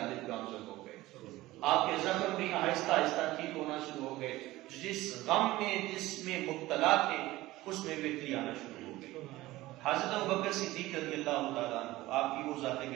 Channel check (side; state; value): left; quieter; 17.8 dB